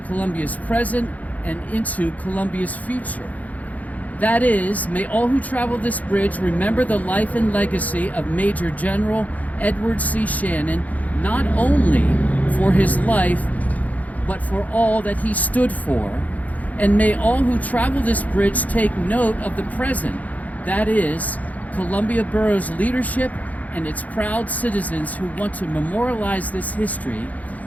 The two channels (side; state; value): right; late; 0.075 ms